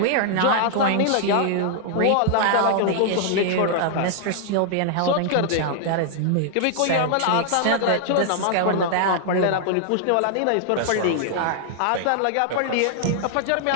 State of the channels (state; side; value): different; both; correlation 0.00